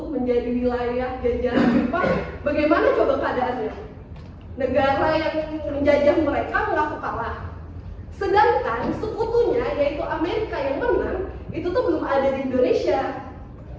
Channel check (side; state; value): both; identical; correlation 1.00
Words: menjadi wilayah jajahan Jepang, bagaimana coba keadaannya? Negara yang menjajah mereka mengaku kalah, sedangkan sekutunya yaitu Amerika yang menang itu tuh belum ada di Indonesia.